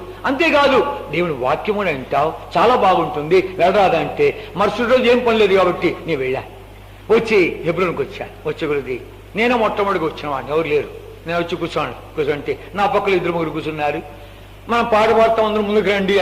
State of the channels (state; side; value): identical; both; correlation 1.00